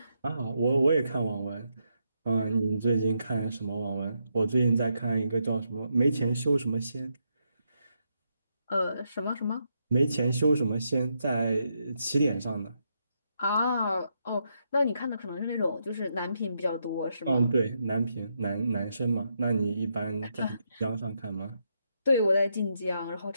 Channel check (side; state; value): both; inverted; correlation -0.81